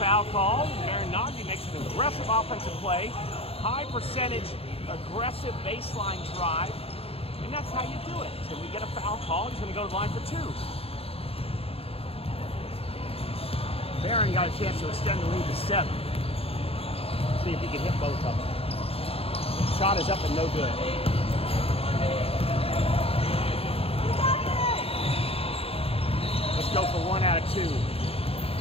called. Naghdi makes an aggressive offensive play. High percentage, aggressive baseline drive. And that's how you do it. So we get a foul call. He's going to go to the line for two. Barron got a chance to extend the lead to 7. See if he can hit both of them. Shot is up and no good. Let's go for 1 out of 2.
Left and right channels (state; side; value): late; right; 0.28 ms